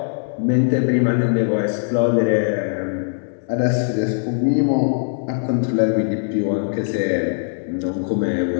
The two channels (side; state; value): right; silent; digital silence